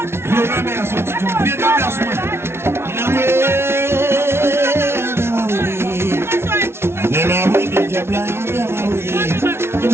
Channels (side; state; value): left; late; 0.12 ms